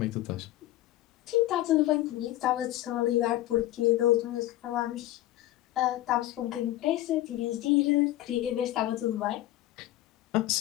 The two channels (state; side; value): quieter; right; 15.2 dB